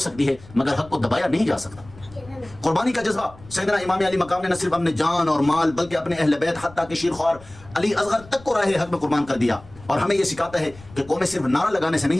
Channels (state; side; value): noise; left; rumble, 21 dB below the sound